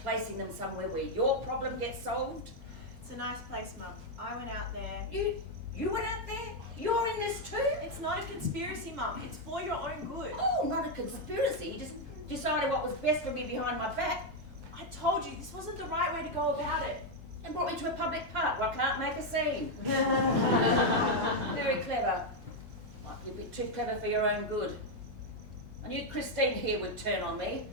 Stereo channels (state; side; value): normal; both; correlation 0.02